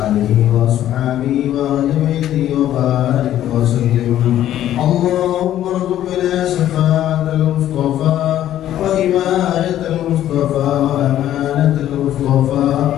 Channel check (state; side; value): quieter; right; 12.1 dB